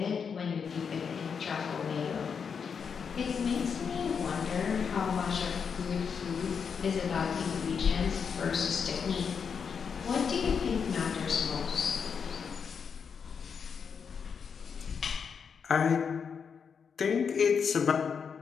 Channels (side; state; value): right; quieter; 6.4 dB